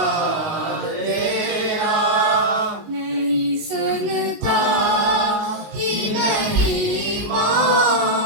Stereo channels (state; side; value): late; left; 19 ms